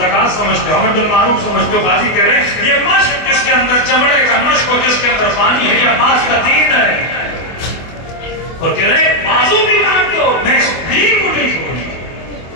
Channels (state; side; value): late; right; 24 ms